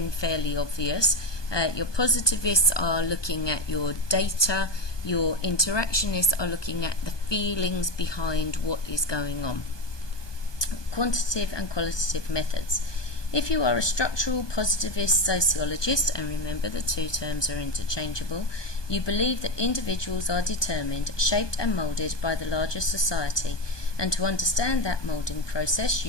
fairly obvious. Your positivists are looking at your data, your interactionists are looking at the feelings behind what is going on. Quantitative and qualitative methods. If you are a structural positivist sociologist, and remember the two terms are interchangeable, you believe that individuals are determined, shaped and moulded by the larger society, and to understand that moulding process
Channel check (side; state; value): right; late; 1.2 ms